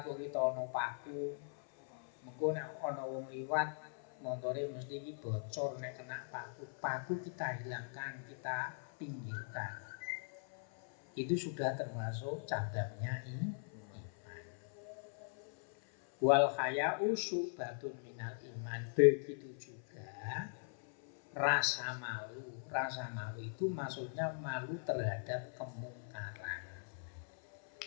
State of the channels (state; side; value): silent; right; 51 dB below the other